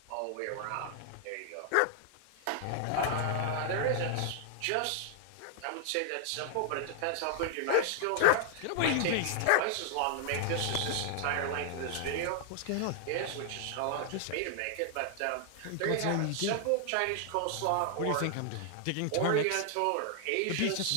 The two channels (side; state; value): both; different; correlation 0.00